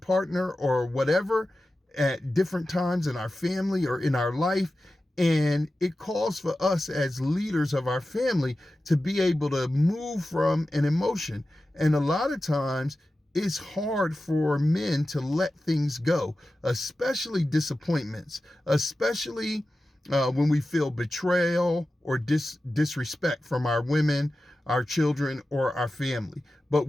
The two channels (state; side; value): normal; both; correlation 0.94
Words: or whatever at different times in our family or in our life. And it calls for us as leaders of our family to be able to move from an emotion. And a lot of times it's hard for men to let things go, especially disappointments, especially when we feel betrayal or disrespect from our women, our children, or our family. But